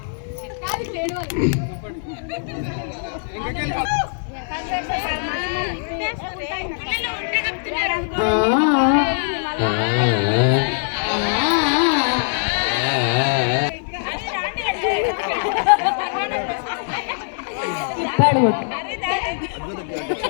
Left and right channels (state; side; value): silent; right; digital silence